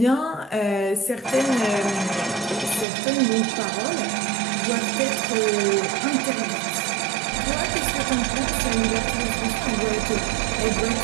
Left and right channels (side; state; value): left; drops out; at 2.9 s